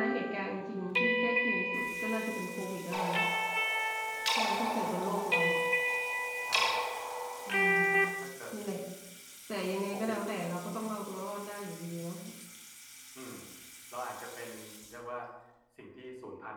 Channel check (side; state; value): both; identical; correlation 1.00